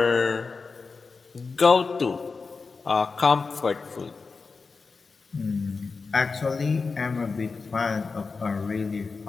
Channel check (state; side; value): quieter; right; 4.5 dB